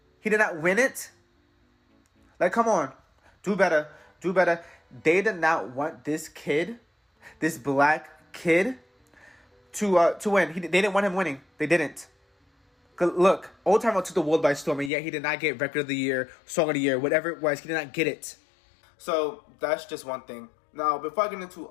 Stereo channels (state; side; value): drops out; right; at 14.9 s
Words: He did not win it. Like, come on. Do better. They did not want this kid, this black kid, to win. They didn't want him winning. They didn't. Look, Old Town Road took the world by storm, and yet he did not get Record of the Year, Song of the Year, whatever it was. He did not get it. So that's just one thing. Now, before I get